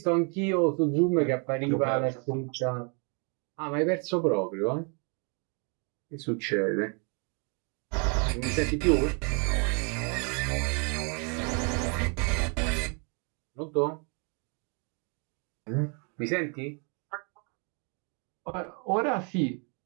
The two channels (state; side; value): quieter; left; 36.6 dB